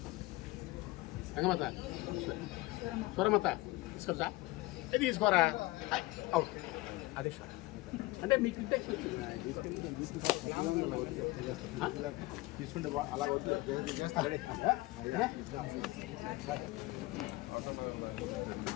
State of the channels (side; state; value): right; quieter; 20.8 dB